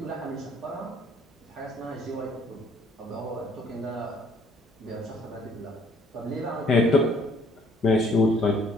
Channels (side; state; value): both; normal; correlation 0.61